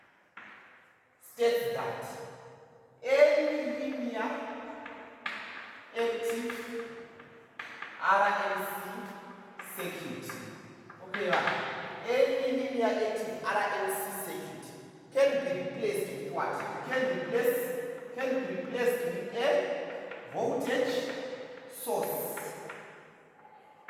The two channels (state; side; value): identical; both; correlation 1.00